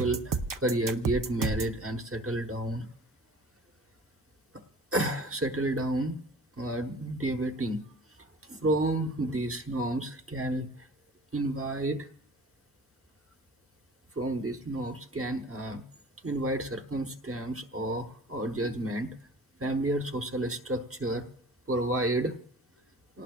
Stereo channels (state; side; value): normal; both; correlation 0.45